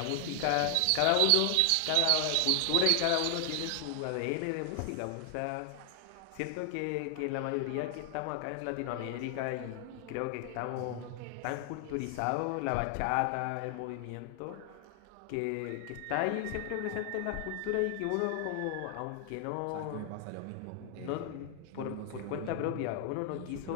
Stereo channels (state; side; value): different; both; correlation 0.00